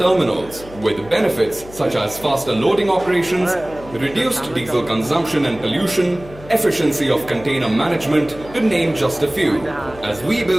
with benefits such as faster loading operations, reduced diesel consumption and pollution, efficiency of container management, to name just a few. As we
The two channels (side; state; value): left; noise; hum, 18 dB below the sound